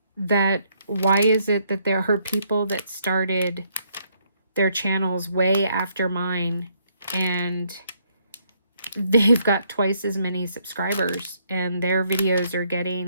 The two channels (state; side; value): inverted; both; correlation -0.71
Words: That why is it that there are people that started their channels way after mine and they've got twice as many subscribers and their videos are